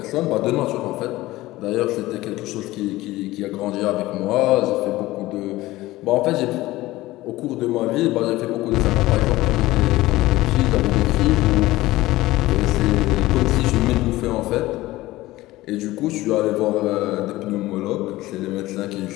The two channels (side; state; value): right; quieter; 17.8 dB